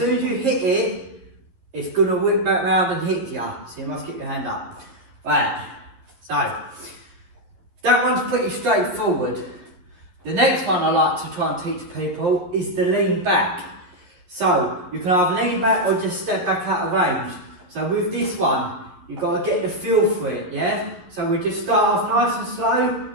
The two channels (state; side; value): late; left; 11 ms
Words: as you hit it, it's going to whip back round and hit you. So you must keep your hand up. Right, so that one's pretty straightforward. The next one I like to try and teach people is the lean back. So you can either lean back or just step back out of range. So with this one, you've got to get the feel for it, yeah? So we just start off nice and slow,